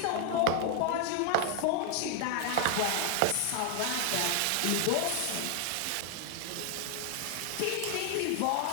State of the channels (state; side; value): different; both; correlation 0.00